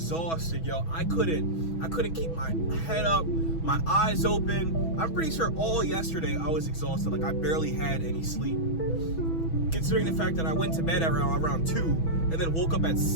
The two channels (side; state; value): right; late; 6.1 ms